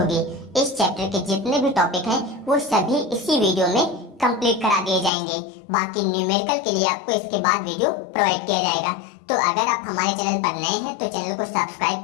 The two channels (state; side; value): drops out; right; at 5.1 s